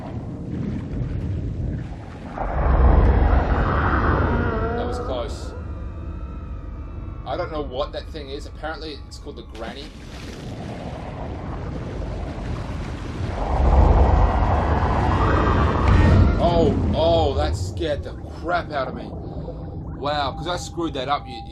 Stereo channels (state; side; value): identical; both; correlation 1.00